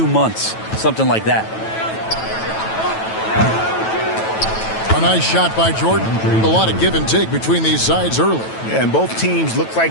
months, something like that. A nice shot by Jordan. A lot of give and take between these sides early. Yeah, and both teams look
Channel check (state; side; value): late; right; 9.1 ms